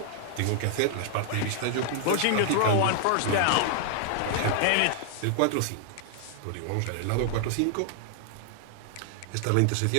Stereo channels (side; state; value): both; different; correlation 0.00